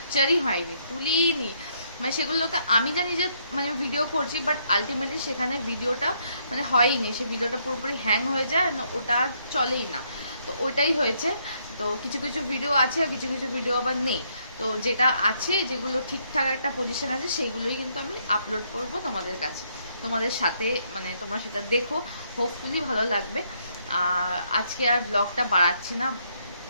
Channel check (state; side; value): inverted; both; correlation -0.72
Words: হয়নি, তুলিনি, মানে সেগুলোতে আমি জানি যে মানে ভিডিও করছি, বাট আলটিমেটলি সেখানে ভিডিওটা মানে হয়নি, সে ভিডিওটা পুরোপুরি হ্যাং হয়ে যায়, ওটা আর চলেই না। তো ওইটাই হয়েছে। তো কিছু কিছু ভিডিও আছে আর কিছু কিছু ভিডিও আবার নেই, তো যেটা আছে যেগুলো ঠিকঠাক একটা পজিশন আছে সেইগুলোই কিন্তু আমি আপলোড করব তোমাদের কাছে, তোমাদের সাথে, মানে তোমরা সেটা দেখো, হোপফুলি ভালো লাগবে। আর আজকে আর ব্লগটা বাড়াচ্ছি না,